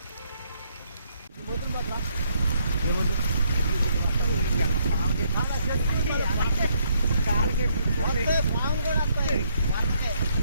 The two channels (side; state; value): both; inverted; correlation -0.70